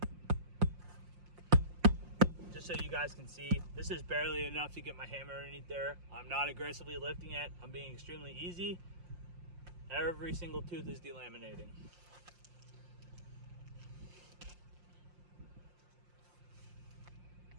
Just so you guys can see, this is barely enough to get my hammer underneath there. I'm not aggressively lifting it. I'm being extremely easy. Every single tooth is delaminating.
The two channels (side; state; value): left; late; 5.7 ms